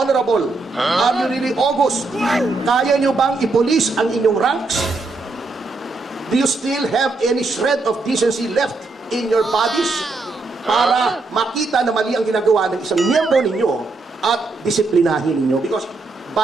Are you really august? Kaya nyo bang ipolis ang inyong ranks? Do you still have any shred of decency left in your bodies? Para makita na mali ang ginagawa ng isang miyembro ninyo at disiplinahin ninyo. Because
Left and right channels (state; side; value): quieter; left; 3.5 dB